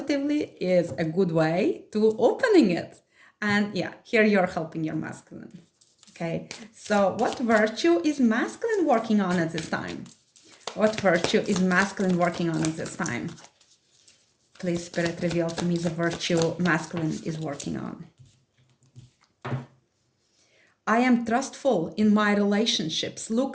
is a good way to opening it. And yeah, here you're helping your masculine. Okay, so what virtue is masculine working on at this time? What virtue is masculine working on at this time? Please, Spirit, reveal to me the virtue masculine is working on. I am trustful in my relationships.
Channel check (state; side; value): identical; both; correlation 1.00